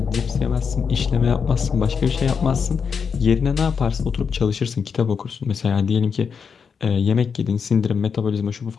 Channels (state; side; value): quieter; right; 6.2 dB